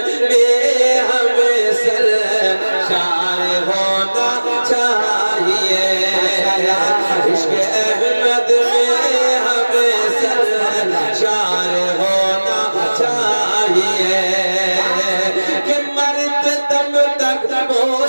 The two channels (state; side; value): inverted; both; correlation -1.00